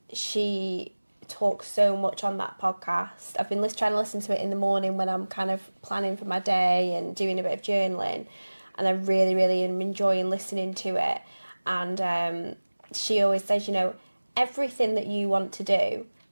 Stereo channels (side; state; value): both; inverted; correlation -1.00